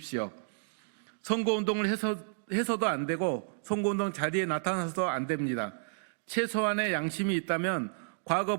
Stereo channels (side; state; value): left; silent; digital silence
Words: 선거운동을 해서도 안 되고 선거운동 자리에 나타나서도 안 됩니다. 최소한의 양심이 있다면